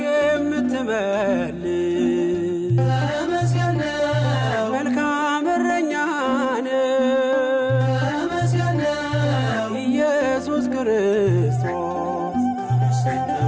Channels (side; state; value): both; identical; correlation 1.00